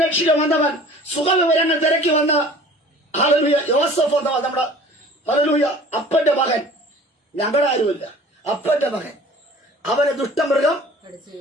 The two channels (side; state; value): both; normal; correlation 0.46